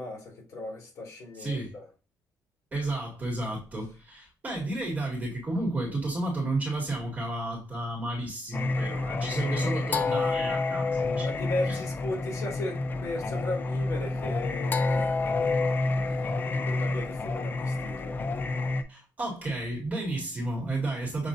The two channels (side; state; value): both; normal; correlation 0.84